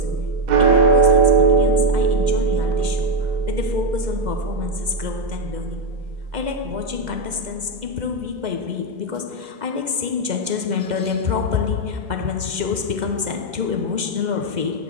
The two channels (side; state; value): left; late; 2.0 ms